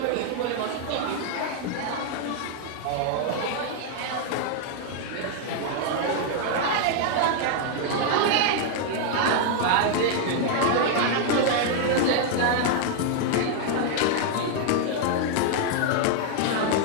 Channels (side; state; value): both; different; correlation 0.00